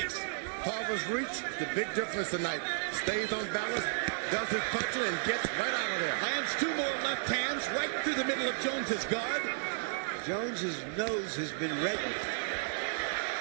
Tarver's reach, the big difference tonight. Stays on balance, does his punching, and gets right out of there. Lands two more left hands right through the middle of Jones's guard. Jones's nose has been reddened.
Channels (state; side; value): silent; left; digital silence